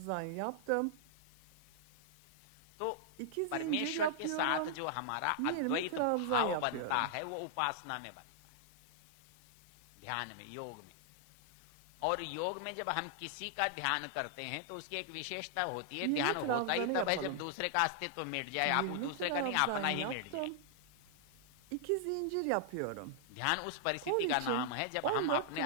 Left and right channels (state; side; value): different; both; correlation -0.01